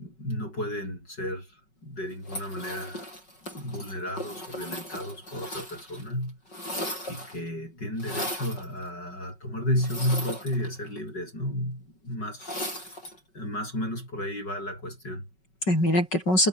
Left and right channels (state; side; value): late; right; 5.3 ms